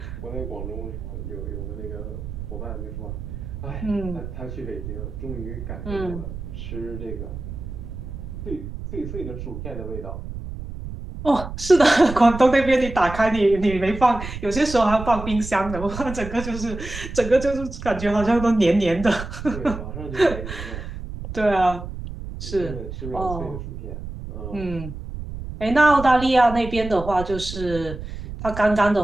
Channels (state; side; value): noise; right; rumble, 9 dB below the sound